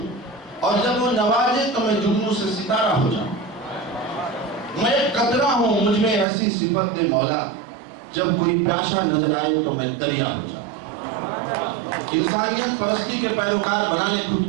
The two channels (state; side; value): drops out; left; at 6.2 s